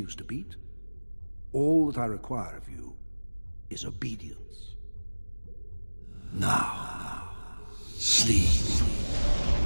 to beat, all that I require of you is obedience. Now, sleep.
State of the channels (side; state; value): both; inverted; correlation -1.00